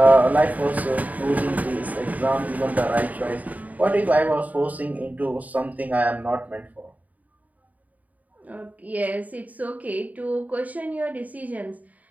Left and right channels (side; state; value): left; late; 0.075 ms